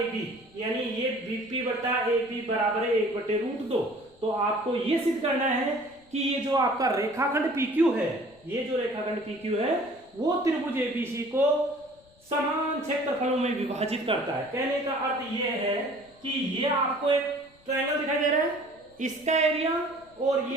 यानी ये BP बट्टा AB बराबर है 1/√2। तो आपको ये सिद्ध करना है कि ये जो आपका रेखाखंड PQ है, ये जो रेखाखंड PQ है वो त्रिभुज ABC को समान क्षेत्रफलों में विभाजित करता है। कहने का अर्थ ये है कि ये आपको एक ट्रायंगल दिखाई दे रहा है, इसका एरिया, और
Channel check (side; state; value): left; noise; rumble, 30 dB below the sound